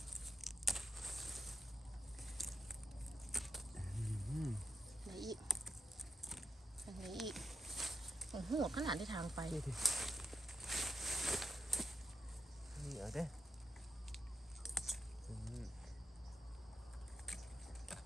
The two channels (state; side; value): normal; both; correlation 0.82